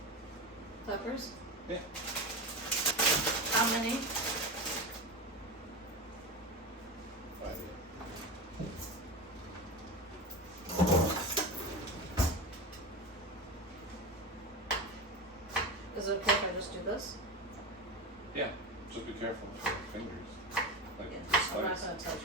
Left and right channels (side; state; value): both; normal; correlation 0.23